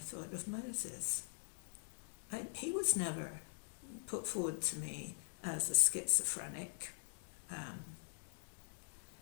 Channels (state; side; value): silent; right; digital silence